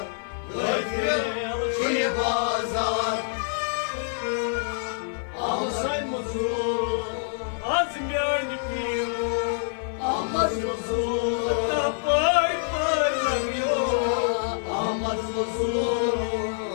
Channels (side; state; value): right; silent; digital silence